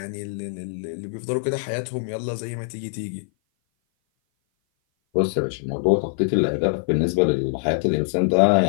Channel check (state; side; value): silent; right; 57 dB below the other